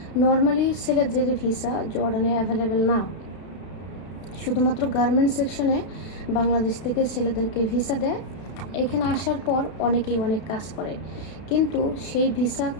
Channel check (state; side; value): late; right; 32 ms